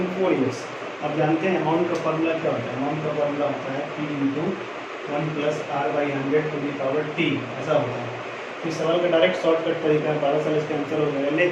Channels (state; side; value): identical; both; correlation 1.00